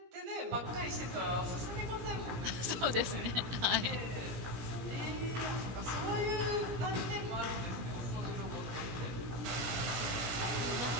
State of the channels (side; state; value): left; late; 17 ms